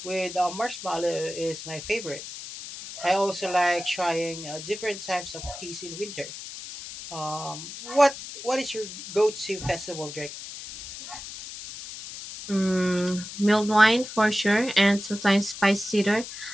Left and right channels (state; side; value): noise; left; hiss, 11 dB below the sound